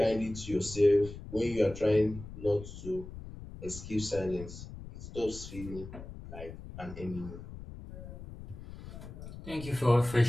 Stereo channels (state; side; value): noise; left; rumble, 12 dB below the sound